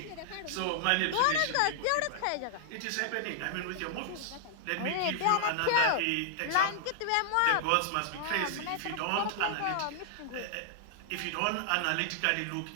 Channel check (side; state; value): both; different; correlation -0.01